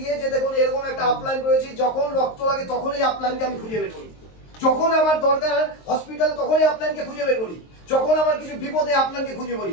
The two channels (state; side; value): late; right; 23 ms